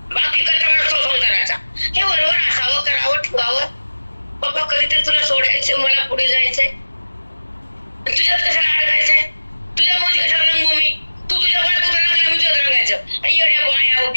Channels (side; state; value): both; inverted; correlation -1.00